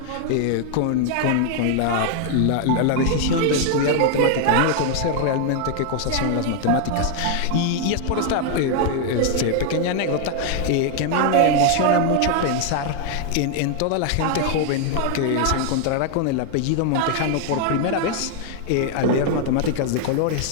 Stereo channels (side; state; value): both; different; correlation 0.00